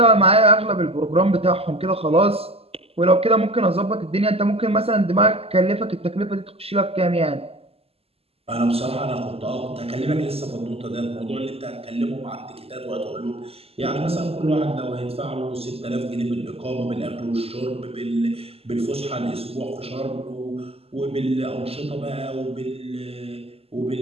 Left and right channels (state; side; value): late; left; 0.29 ms